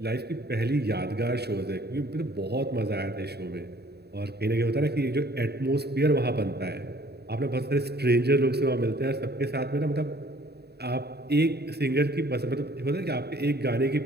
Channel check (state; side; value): late; left; 0.47 ms